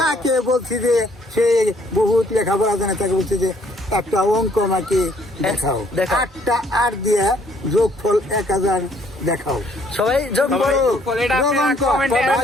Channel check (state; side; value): normal; both; correlation 0.64